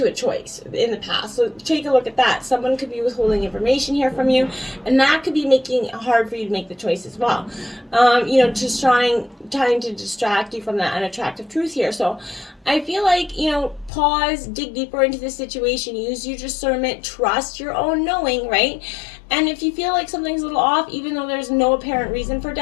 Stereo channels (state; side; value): drops out; right; at 13.9 s